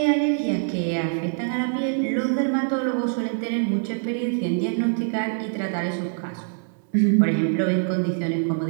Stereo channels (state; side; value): silent; left; digital silence